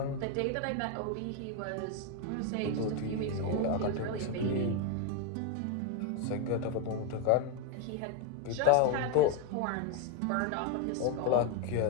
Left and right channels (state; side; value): different; both; correlation 0.02